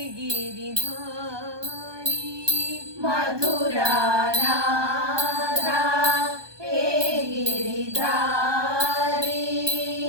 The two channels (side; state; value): left; late; 1.2 ms